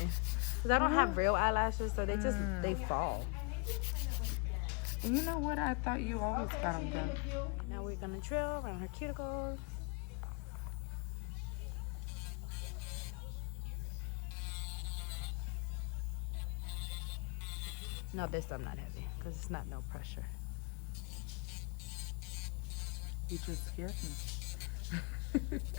Because I don't have real eyelashes, so they just, they fall. And you know what? I thought you always got them done. Now we're going to drill around her cuticles. No, this I'm not heavy, because it's not no pressure. You just scared me.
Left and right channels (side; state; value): right; quieter; 33.5 dB